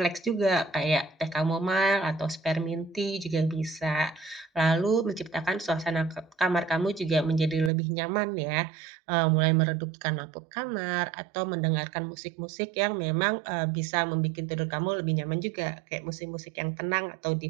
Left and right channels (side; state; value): left; drops out; at 7.7 s